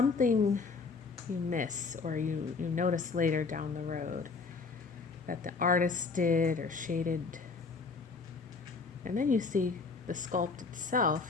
you miss or you notice later down the road that the artist did or shaded. And then you see the sculpt itself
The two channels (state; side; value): quieter; right; 4.5 dB